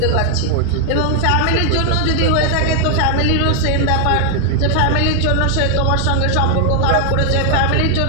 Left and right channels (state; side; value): different; both; correlation 0.00